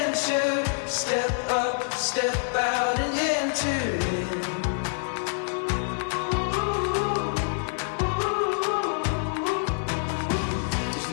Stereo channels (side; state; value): right; silent; digital silence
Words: Step up, step out and enter in. There's